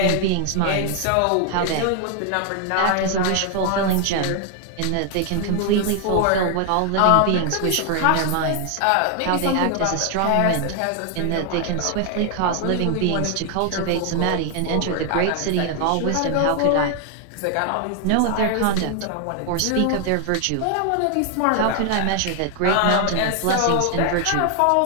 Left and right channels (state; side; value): different; both; correlation 0.00